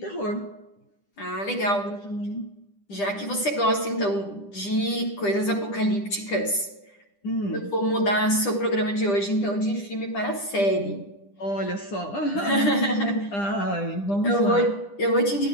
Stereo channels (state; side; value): late; right; 10 ms